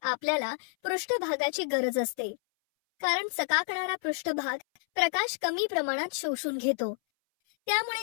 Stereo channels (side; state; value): right; silent; 58 dB below the other